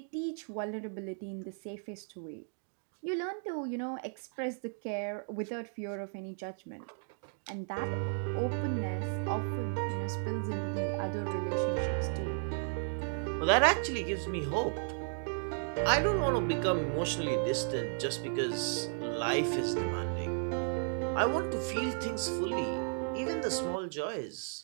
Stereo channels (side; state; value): left; silent; 55 dB below the other